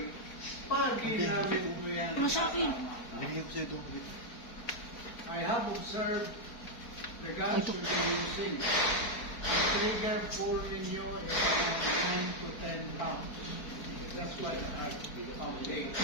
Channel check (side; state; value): right; late; 4.4 ms